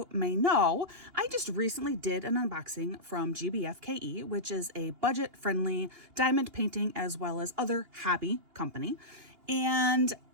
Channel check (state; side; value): late; left; 2.8 ms